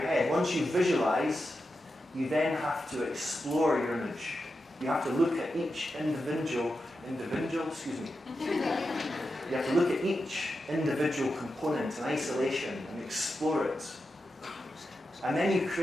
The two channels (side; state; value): both; normal; correlation 0.89